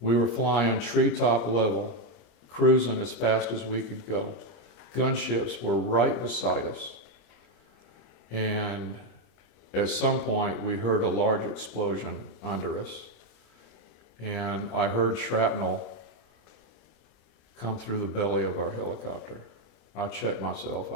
were flying treetop level, cruising as fast as we could go. Gunships were right beside us. And at some point, we heard a large explosion under us. And I heard shrapnel come through the belly of our helicopter. I checked myself,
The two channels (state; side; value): late; right; 25 ms